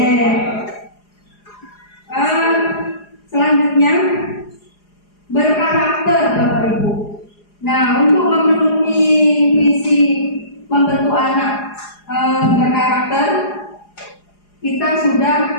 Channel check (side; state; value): right; late; 4.8 ms